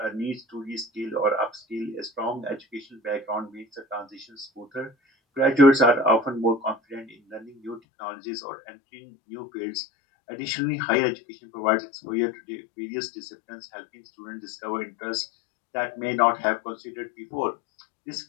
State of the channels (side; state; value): right; drops out; at 7.8 s